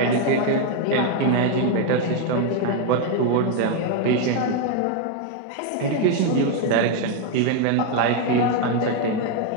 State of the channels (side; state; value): both; different; correlation 0.01